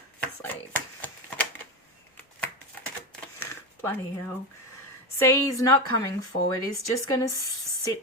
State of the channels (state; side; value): normal; both; correlation 0.18